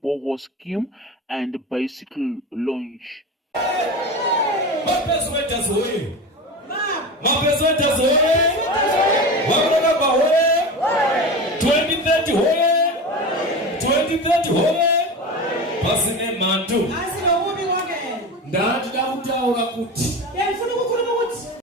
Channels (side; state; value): both; normal; correlation 0.27